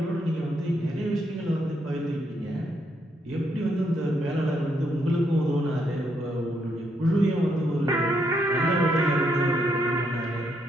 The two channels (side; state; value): both; normal; correlation 0.76